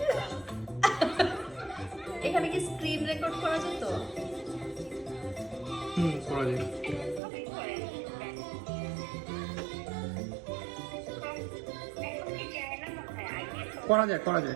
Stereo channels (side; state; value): left; drops out; at 7.2 s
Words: এখানে কি স্ক্রিন রেকর্ড করা যেত? করা যায়। করা